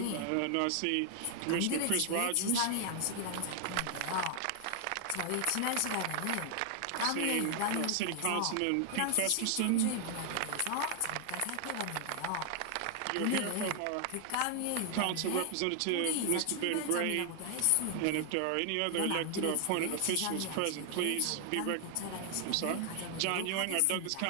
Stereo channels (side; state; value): both; different; correlation 0.00